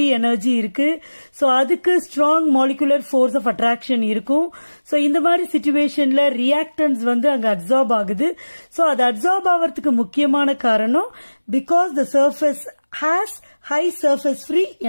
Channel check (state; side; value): inverted; both; correlation -1.00